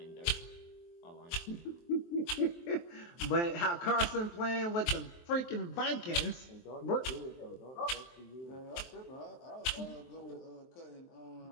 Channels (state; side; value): late; right; 23 ms